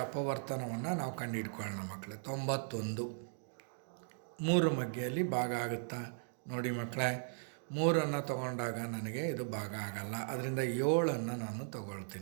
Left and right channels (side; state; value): left; silent; digital silence